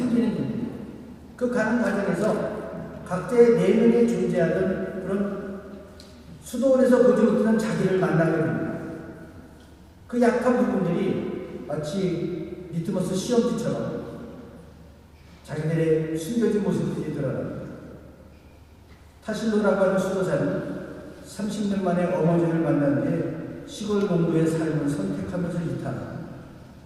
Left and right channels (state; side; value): identical; both; correlation 1.00